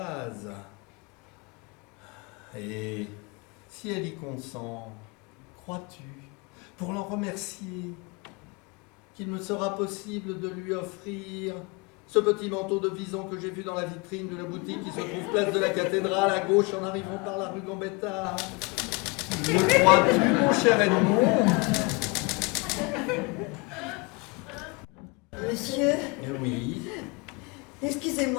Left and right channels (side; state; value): right; quieter; 28.7 dB